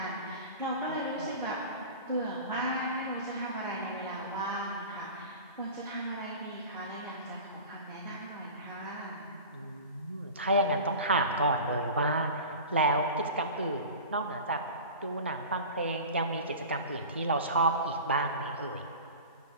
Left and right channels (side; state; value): both; inverted; correlation -0.35